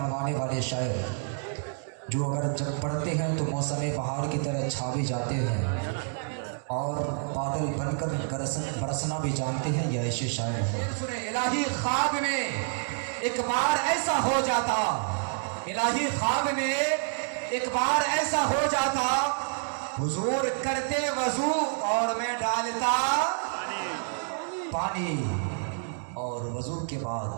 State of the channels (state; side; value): silent; left; 59 dB below the other